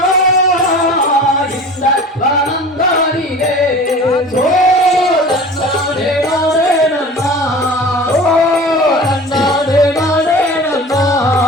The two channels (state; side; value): normal; both; correlation 0.39